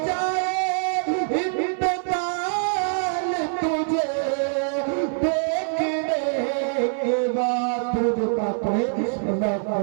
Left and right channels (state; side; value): silent; left; 57 dB below the other